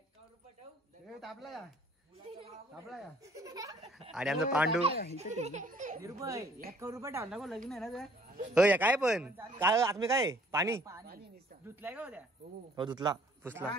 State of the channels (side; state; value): both; normal; correlation 0.59